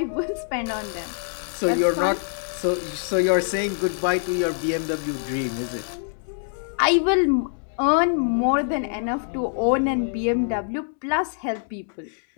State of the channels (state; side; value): silent; right; 62 dB below the other